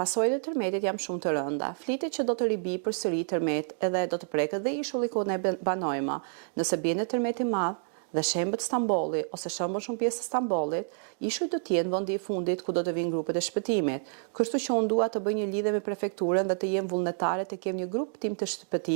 e tërmetit jam shumë të rënda. Flitet që do të ribi përsëri tërmet edhe do të preket dhe ishulli ku ne banojmë. Nëse bie në tërmet i madh dhe shembët Stambolli ose shembën shumë pjesë të Stambollit, ishuj do t'jenë vendi i fundit ku do të vinë grupet e shpëtimit. Kështu që unë dua të bëj një lidhje me prefekturën dhe të jem vullnetare të kem një grup tim të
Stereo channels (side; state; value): left; silent; digital silence